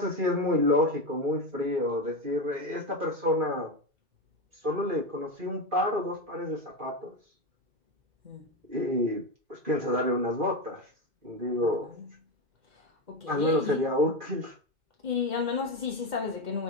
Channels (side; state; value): left; late; 2.1 ms